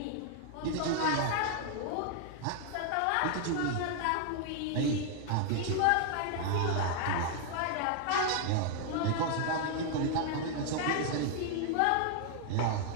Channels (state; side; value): different; both; correlation 0.00